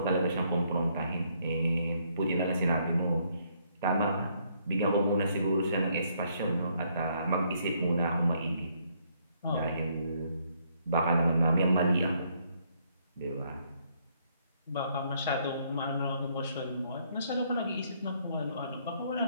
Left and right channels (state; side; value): inverted; both; correlation -0.70